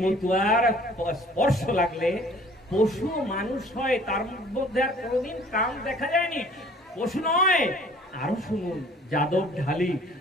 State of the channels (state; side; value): normal; both; correlation 0.53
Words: মতুয়ার স্পর্শ লাগলে পশু মানুষ হয়, তার মধ্যে আর কোনোদিন কাম দেখা যায়নি। পশু নয়। আরো শুনুন, যাদব